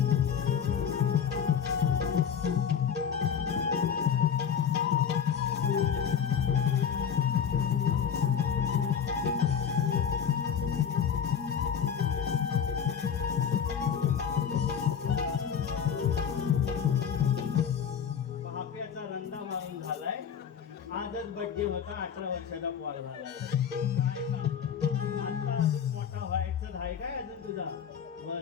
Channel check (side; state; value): right; quieter; 7.6 dB